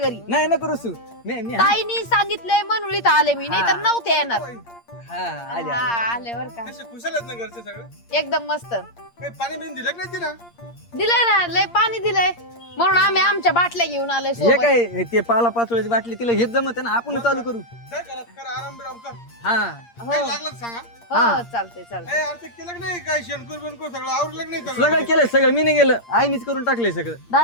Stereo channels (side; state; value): right; late; 8.6 ms